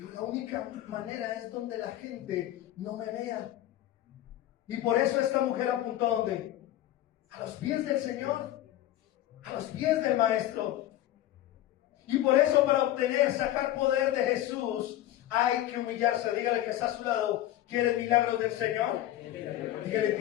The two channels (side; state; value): right; quieter; 13.8 dB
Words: la única manera es donde la gente no me vea. Y por eso esta mujer apuntó ¿a dónde? A los pies del Señor, a los pies del Maestro. Y por eso para obtener, sacar poder de Jesús, hay que humillarse. Dígale que está a su lado, ¿quieres milagros del Señor? Dígale,